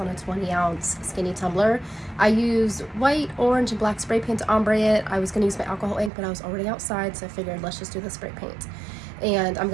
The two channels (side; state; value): left; drops out; at 6.1 s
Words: a 20-ounce skinny tumbler. I used white, orange, and black spray paint to ombre it. I was going to use my alcohol ink, but I was already outside, so I figured let's just do the spray paint. And I'm